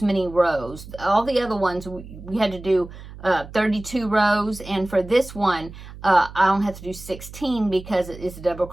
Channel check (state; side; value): noise; right; hum, 15 dB below the sound